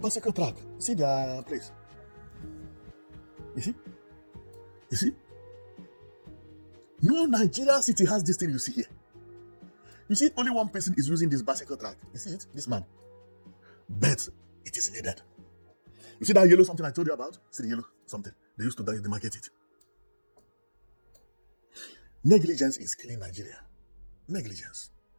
track. See their place. You see? You see? No Nigerian city has this thing you see here. You see, only one person is using this bicycle track. You see it? This man. But it is needed. You see that yellow something I told you about? See the yellow something? They used to demarcate it. Negligence is killing Nigeria. Negligence.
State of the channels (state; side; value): inverted; both; correlation -1.00